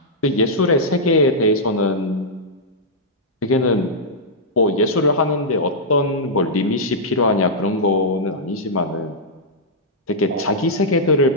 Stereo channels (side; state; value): both; normal; correlation -0.09